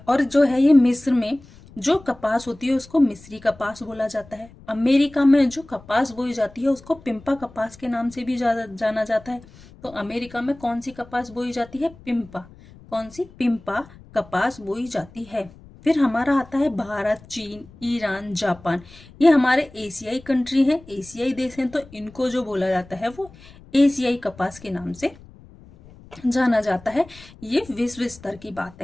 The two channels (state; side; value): noise; left; rumble, 22 dB below the sound